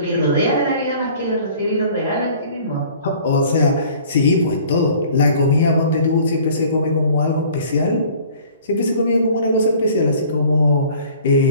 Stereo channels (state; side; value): inverted; both; correlation -0.51